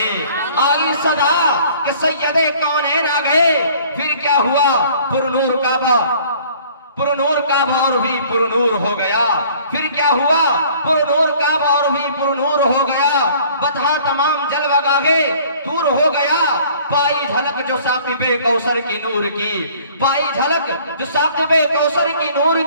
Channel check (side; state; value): both; inverted; correlation -0.53